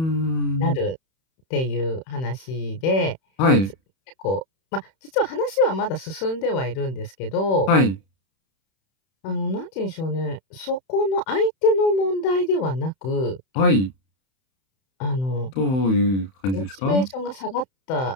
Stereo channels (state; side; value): late; right; 31 ms